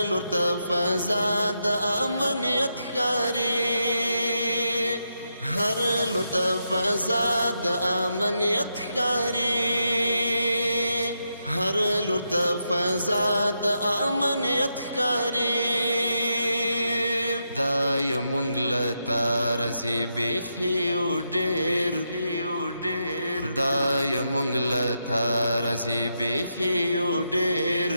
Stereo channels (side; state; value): both; inverted; correlation -0.83